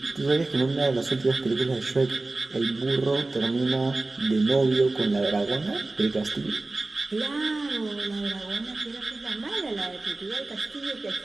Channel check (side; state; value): left; quieter; 3.1 dB